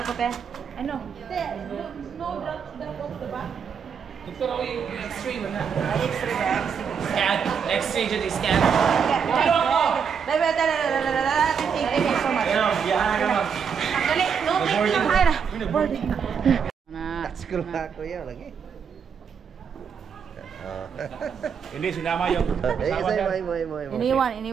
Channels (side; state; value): left; quieter; 6.8 dB